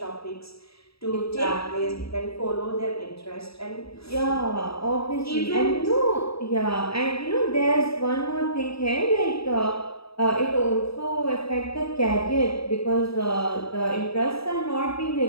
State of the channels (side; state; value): right; late; 0.77 ms